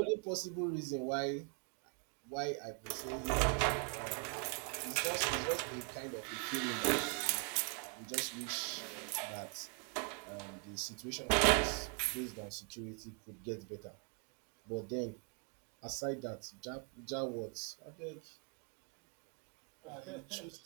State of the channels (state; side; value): quieter; left; 35.5 dB